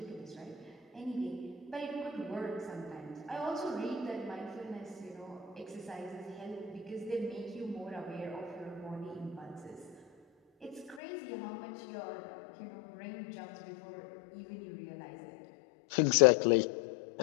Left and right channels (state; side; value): drops out; right; at 11.0 s